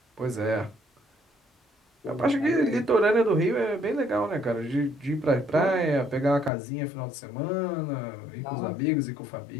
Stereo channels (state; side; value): drops out; right; at 6.5 s